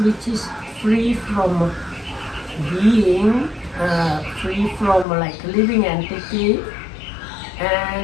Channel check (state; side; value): drops out; right; at 5.1 s